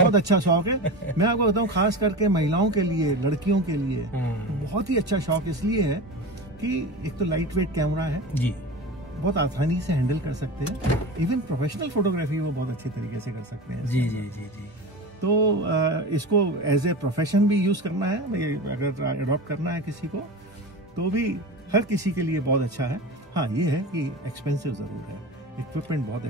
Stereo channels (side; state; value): both; normal; correlation 0.29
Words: अच्छा शौक है। मैं आपको बताऊं, खास करके महिलाओं के लिए, लड़कियों के लिए बहुत ही अच्छा शौक इसलिए है कि एक तो लाइट वेट कैमरा है जी, बहुत आसानी से हैंडल कर सकते हैं। इवन प्रोफेशनल फोटोग्राफी वो बहुत अच्छी तरीके से कर सकते हैं जी जी जी जी। तो इसको एज ए प्रोफेशन भी यूज करना है, अगर अडॉप्ट करना है किसी को, तो भी हर किसी के लिए बहुत अच्छा है। हाँ, ये है कि एक्सपेंसिव जरूर है, इक्विपमेंट बहुत